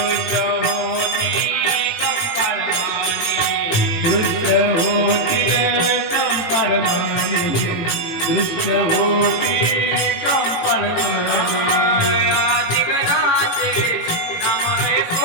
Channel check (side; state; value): right; late; 18 ms